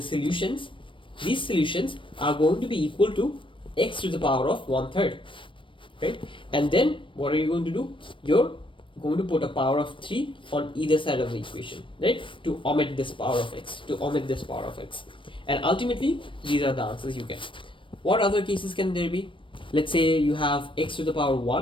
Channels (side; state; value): right; late; 0.25 ms